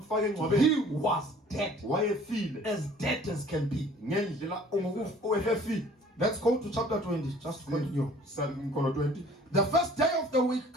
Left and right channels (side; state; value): both; normal; correlation 0.52